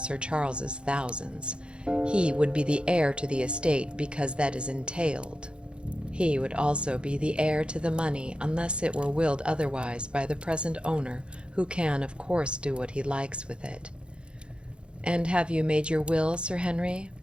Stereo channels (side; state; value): left; late; 0.055 ms